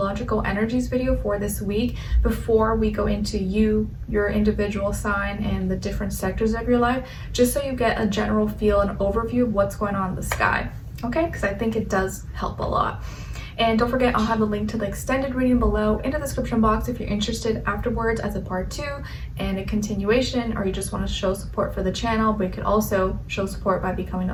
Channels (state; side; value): identical; both; correlation 1.00